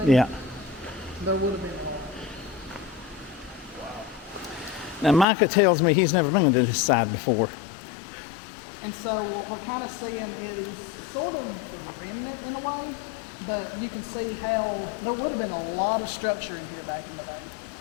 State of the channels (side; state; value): right; drops out; at 5.2 s